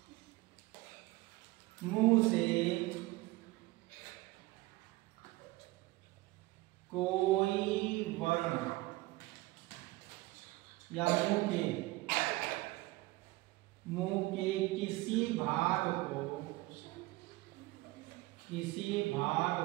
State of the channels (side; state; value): left; quieter; 20.3 dB